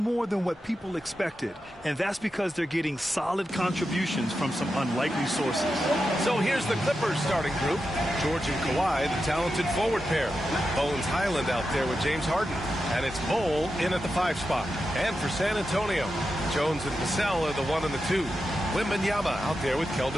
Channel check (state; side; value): normal; both; correlation 0.89